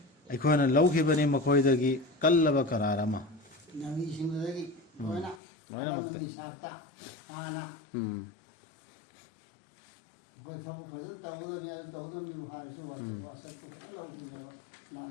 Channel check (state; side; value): drops out; right; at 5.4 s